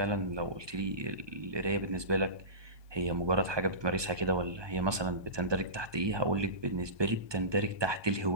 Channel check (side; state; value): left; late; 1.2 ms